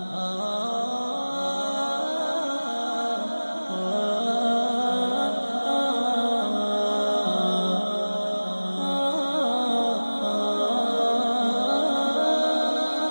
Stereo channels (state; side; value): inverted; both; correlation -1.00